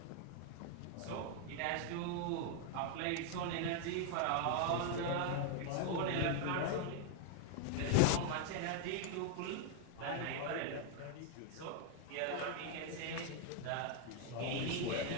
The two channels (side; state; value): both; different; correlation 0.00